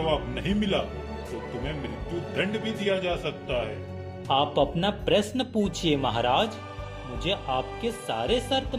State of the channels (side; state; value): both; identical; correlation 1.00